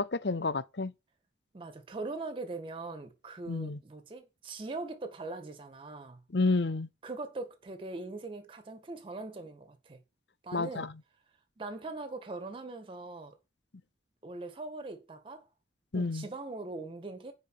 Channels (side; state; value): both; normal; correlation 0.38